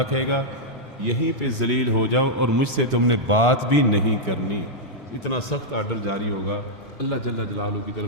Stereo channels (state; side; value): normal; both; correlation -0.05